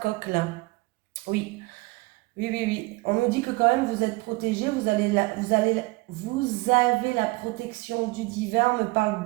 coq là. Oui. Oui, oui, oui. On nous dit que quand même vous êtes protégé, vous avez la protection du divin. On me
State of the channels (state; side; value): quieter; left; 23.6 dB